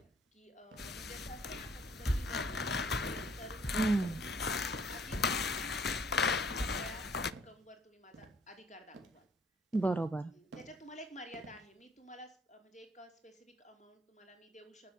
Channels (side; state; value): both; normal; correlation 0.61